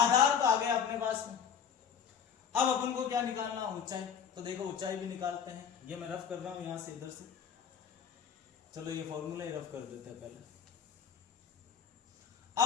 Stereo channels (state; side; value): quieter; right; 7.6 dB